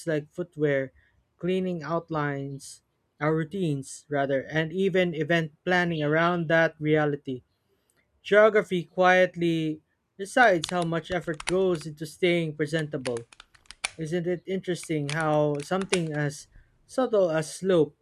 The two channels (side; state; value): both; identical; correlation 1.00